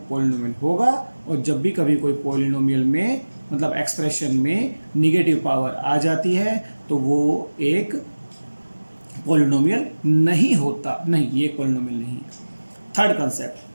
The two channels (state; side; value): inverted; both; correlation -1.00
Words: पॉलिनोमियल होगा, और जब भी कभी कोई पॉलिनोमियल में मतलब एक्सप्रेशन में निगेटिव पावर आ जाती है तो वो एक पॉलिनोमियल नहीं होता। नहीं, ये एक पॉलिनोमियल नहीं है। थर्ड कंसेप्ट,